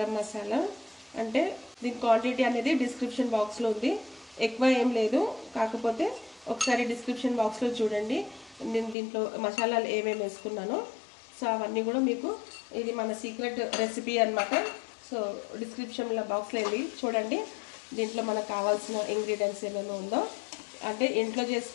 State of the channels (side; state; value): right; drops out; at 9.0 s